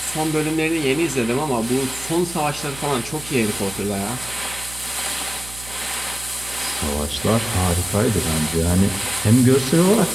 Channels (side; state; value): right; noise; hum, 16 dB below the sound